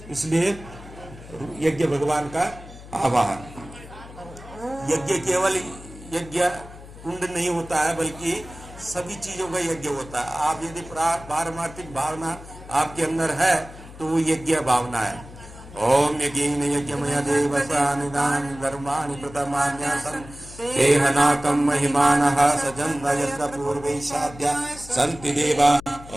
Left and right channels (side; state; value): left; noise; hum, 17 dB below the sound